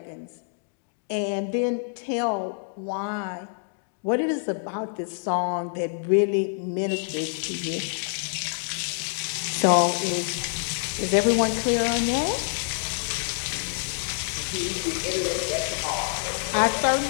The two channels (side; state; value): right; silent; digital silence